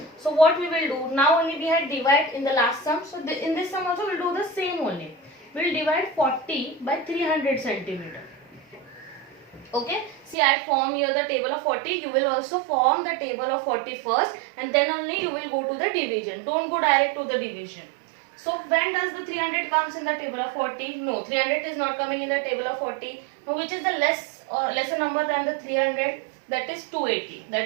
So what we will do, now only we had divide in the last sum. So in this sum also we will do the same only. We will divide 40 by 300 centimeter. Okay, see I form here the table of 40. You will also form the table of 40 first and then only you will go to the division. Don't go direct to the division. So when does the 300 comes in the table of 40? No, 300 is not coming in the table of 40. Now which is the lesser number than the 300? That is 280.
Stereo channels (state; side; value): drops out; left; at 10.4 s